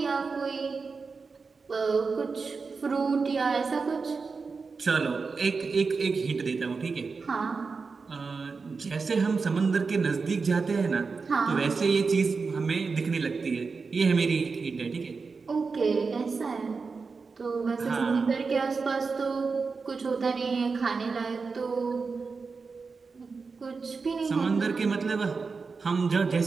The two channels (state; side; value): quieter; left; 4.7 dB